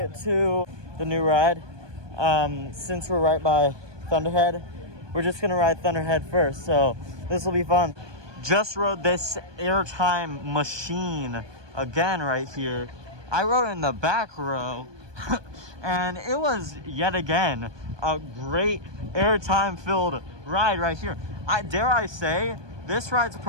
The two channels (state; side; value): late; left; 1.2 ms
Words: to the new ride, since we're right by Thunderhead, we're just gonna ride Thunderhead first, so this will be fun. Just rode this airtime machine again right here. I rode in the back row, and it was yet again a great airtime filled ride right here. Dare I say, this ride's